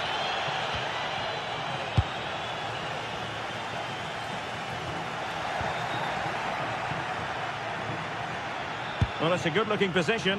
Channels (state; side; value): identical; both; correlation 1.00